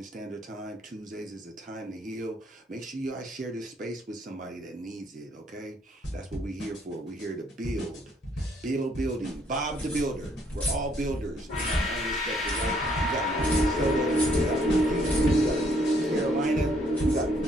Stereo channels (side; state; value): both; normal; correlation 0.68